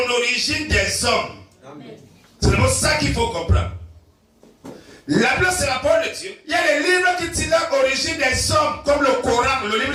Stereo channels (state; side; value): identical; both; correlation 1.00